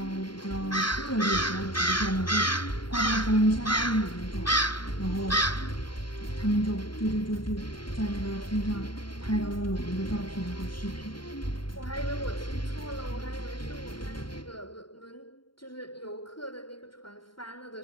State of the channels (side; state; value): right; late; 0.72 ms